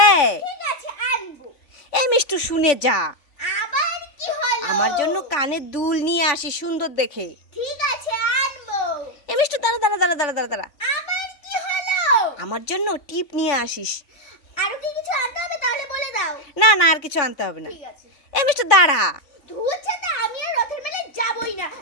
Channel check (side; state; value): right; late; 3.4 ms